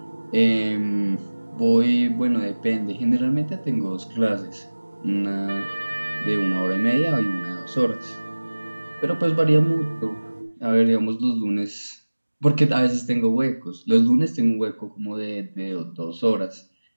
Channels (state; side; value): inverted; both; correlation -1.00